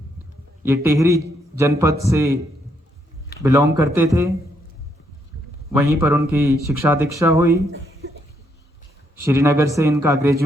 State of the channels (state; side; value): normal; both; correlation 0.75